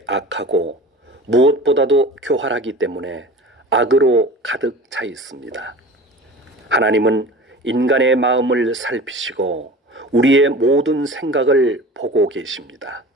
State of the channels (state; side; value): normal; both; correlation 0.38